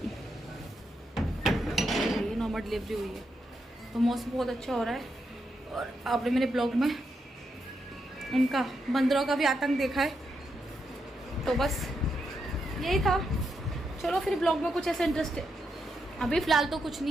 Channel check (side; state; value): both; normal; correlation 0.83